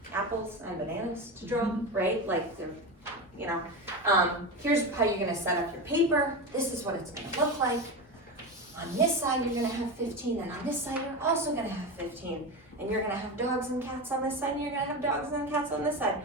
apples and bananas to draw, right? Here's how you're gonna set up your paper. This is what it's gonna look like. On this side, you're gonna have 15, and on this side, you're also gonna have 15. And you're gonna have dogs and cats on this side, and you're gonna have dogs and cats on this side.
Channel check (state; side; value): normal; both; correlation 0.20